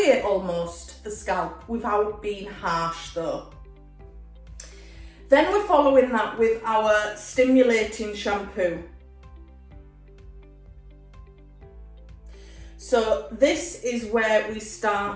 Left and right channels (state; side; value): identical; both; correlation 1.00